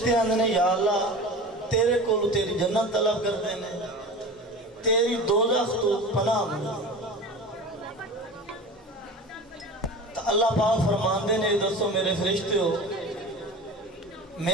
آندے نے یا اللہ تیرے کو تیری جنت طلب کر دینے, تیری دوزخ تو پناہ مانگے. تو اللہ پاک فرماندے نے دوستو میرے فرشتے ہو,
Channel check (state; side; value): normal; both; correlation 0.34